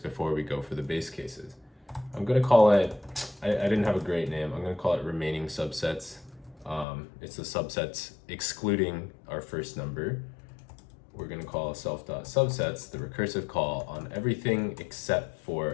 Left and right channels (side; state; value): right; drops out; at 6.9 s